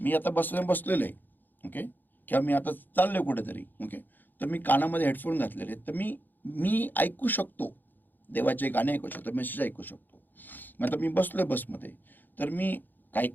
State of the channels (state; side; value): late; right; 0.088 ms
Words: आता बसलेलं आहे, ओके, किंवा मी आता चाललोय कुठेतरी, ओके, तर मी कानामध्ये हेडफोन घातलेले आहेत, तर मी ऐकू शकतो, देवाचे गाणे ऐकू शकतो, मेसेज ऐकू शकतो. मग आता मी बसलोय बसमध्ये, तर मी